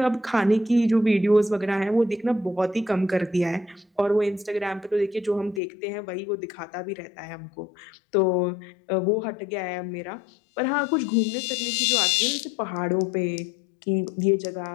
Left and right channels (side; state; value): right; drops out; at 5.6 s